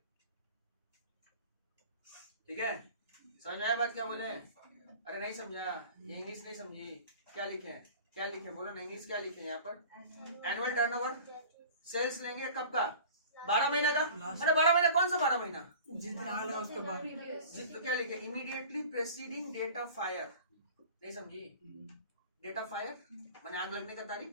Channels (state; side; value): inverted; both; correlation -0.41